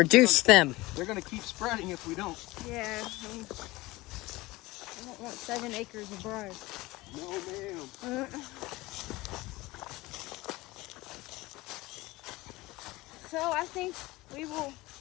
them. They're going to keep spreading if we don't. yeah. I don't want 7 acres of briars. No, ma'am. So I think we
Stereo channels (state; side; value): quieter; right; 20.4 dB